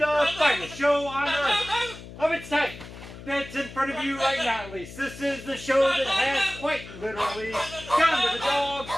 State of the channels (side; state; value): left; noise; hum, 15 dB below the sound